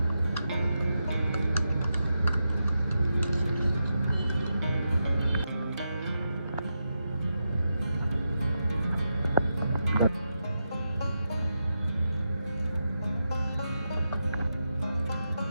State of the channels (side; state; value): both; inverted; correlation -0.87